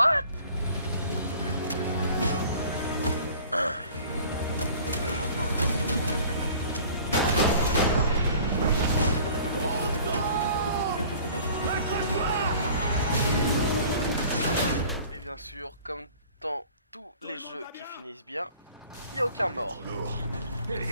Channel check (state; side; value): inverted; both; correlation -0.48